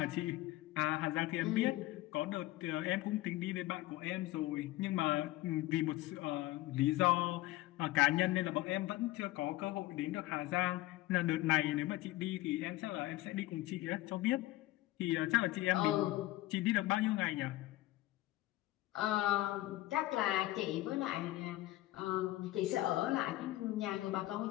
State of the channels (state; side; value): quieter; right; 17.4 dB